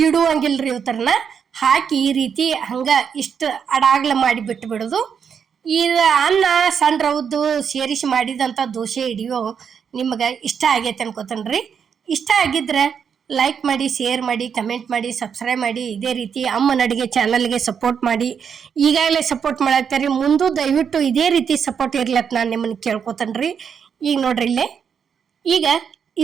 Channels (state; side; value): quieter; left; 7.1 dB